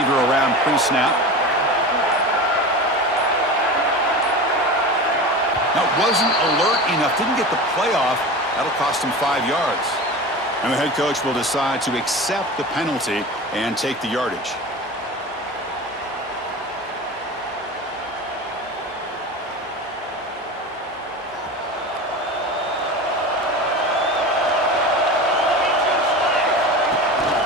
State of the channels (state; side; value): normal; both; correlation 0.30